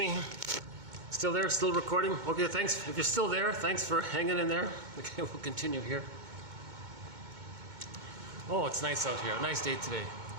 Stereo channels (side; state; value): left; late; 2.2 ms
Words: Still there? Still recording? Okay, thanks. If you're still there, thanks for hanging in there. Okay, we'll continue here. Oh, it's nice out here. A nice day today.